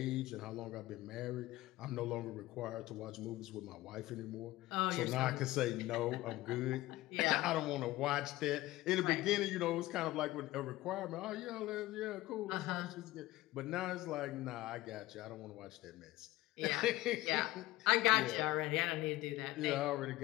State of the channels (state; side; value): quieter; right; 17.4 dB